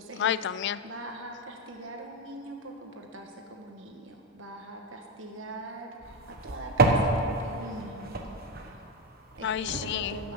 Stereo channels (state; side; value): normal; both; correlation 0.10